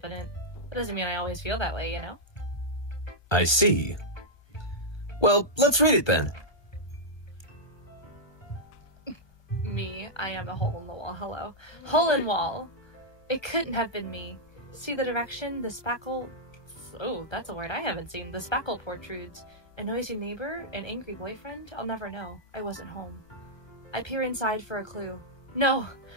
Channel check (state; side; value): late; right; 1.2 ms